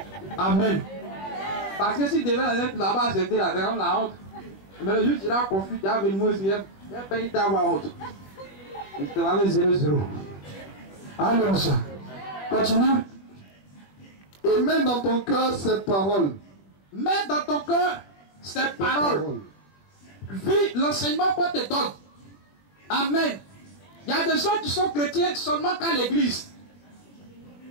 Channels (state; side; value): late; right; 21 ms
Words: Amen. Parce que si tu devais être là-bas, c'était la honte. Mais le jour où tu iras confus, tu as venu me dire, il n'y a pas eu d'avoir honte. Il te va avec 0-0. Alléluia. Continue. Et mets dans ton cœur ces paroles. Mets dans ton cœur ces paroles. Vis l'enseignement qu'on te donne. Amen. Il y a des gens qui sont chrétiens seulement qu'à l'église.